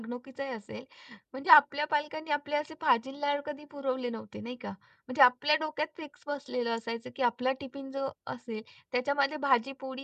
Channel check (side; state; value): both; identical; correlation 1.00